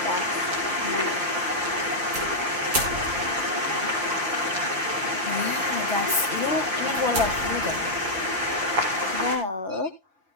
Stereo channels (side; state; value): left; late; 5.8 ms